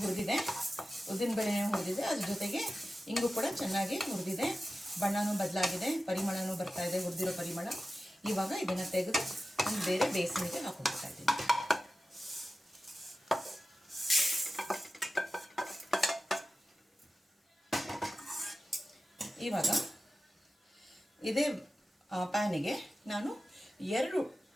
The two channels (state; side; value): normal; both; correlation 0.94